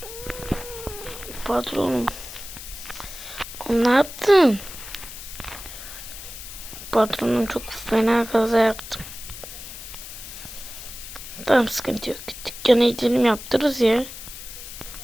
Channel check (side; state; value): left; noise; hiss, 12 dB below the sound